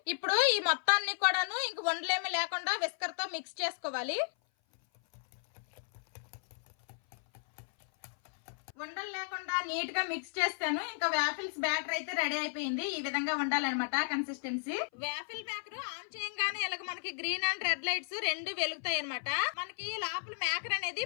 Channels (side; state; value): right; silent; 55 dB below the other